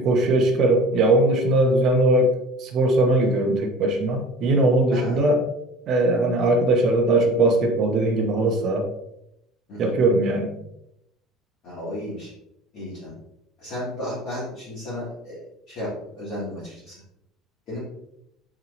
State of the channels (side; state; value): both; normal; correlation 0.42